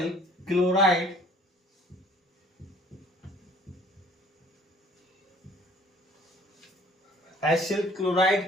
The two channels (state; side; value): normal; both; correlation 0.55